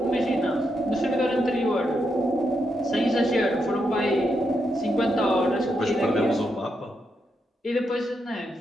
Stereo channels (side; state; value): both; normal; correlation 0.82